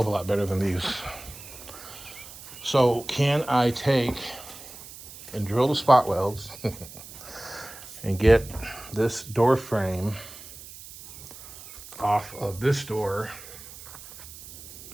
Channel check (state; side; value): noise; right; hiss, 16 dB below the sound